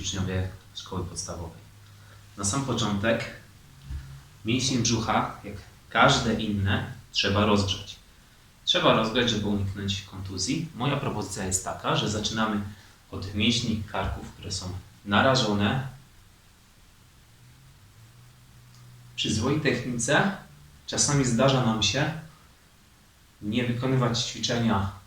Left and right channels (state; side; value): identical; both; correlation 1.00